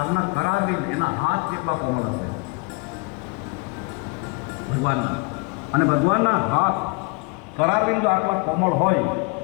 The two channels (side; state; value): right; quieter; 31.9 dB